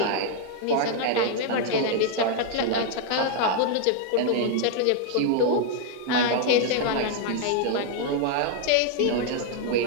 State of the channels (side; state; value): both; different; correlation 0.00